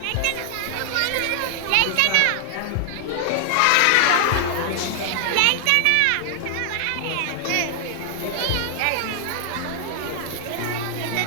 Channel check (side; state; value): both; different; correlation 0.00